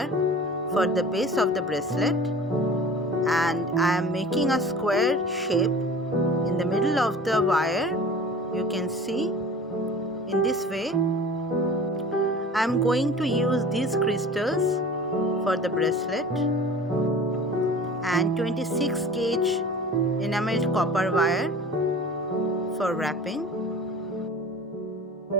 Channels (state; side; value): normal; both; correlation 0.41